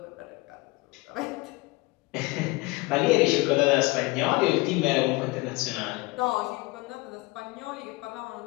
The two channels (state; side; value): quieter; right; 23.6 dB